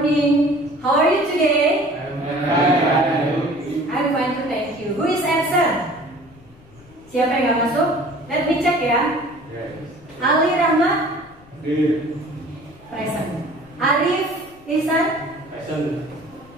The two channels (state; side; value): noise; left; rumble, 26 dB below the sound